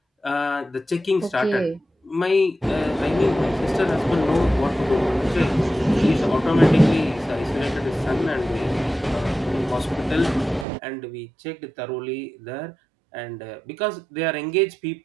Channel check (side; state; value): left; drops out; at 10.7 s